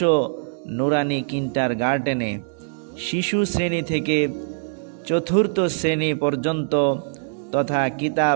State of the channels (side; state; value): left; silent; digital silence